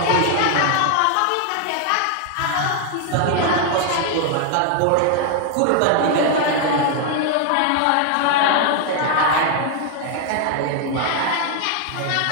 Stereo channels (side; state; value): both; different; correlation 0.00